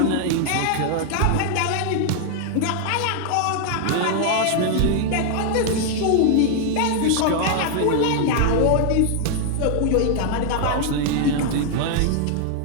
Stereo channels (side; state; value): both; different; correlation 0.00